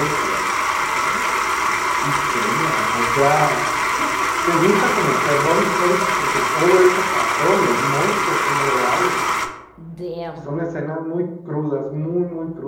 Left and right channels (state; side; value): identical; both; correlation 1.00